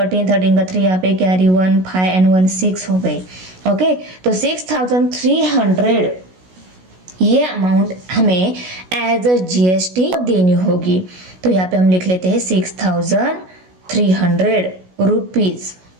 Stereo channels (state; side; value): late; left; 16 ms